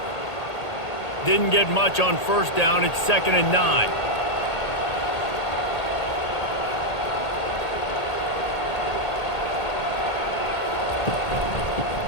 Didn't get much on 1st down. It's 2nd and 9.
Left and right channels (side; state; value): right; late; 1.8 ms